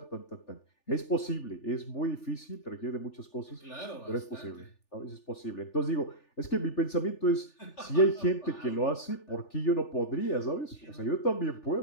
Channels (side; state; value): right; late; 3.4 ms